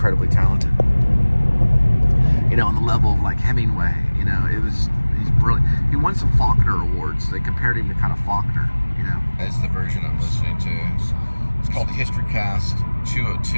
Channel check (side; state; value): both; inverted; correlation -1.00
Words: talented. You know, on the level of like Hemingway, you know, he's brilliant. He won some Faulkner Awards. They compared him to kind of Faulkner, you know. That's the version I'm listening to. It's called Historycast